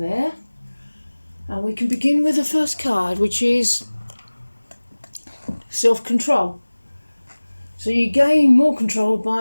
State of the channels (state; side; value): inverted; both; correlation -1.00